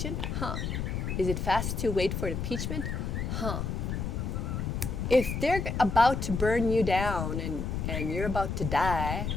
Is it fast to wait for impeachment? If they're about to burn you down and you're about to die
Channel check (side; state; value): left; noise; rumble, 2 dB below the sound